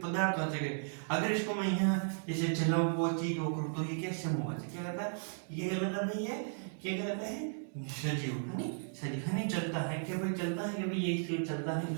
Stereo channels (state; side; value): silent; left; digital silence